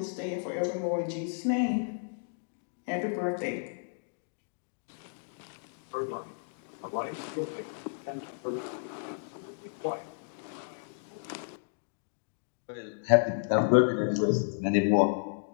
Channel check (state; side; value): silent; right; digital silence